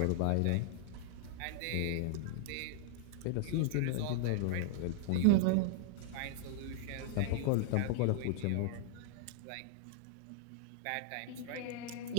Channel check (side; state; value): both; different; correlation -0.01